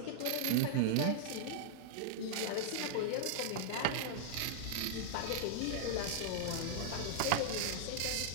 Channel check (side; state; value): both; different; correlation -0.01